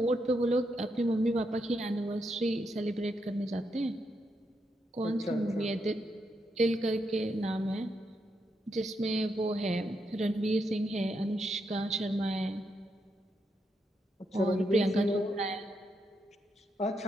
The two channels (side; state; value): both; normal; correlation 0.81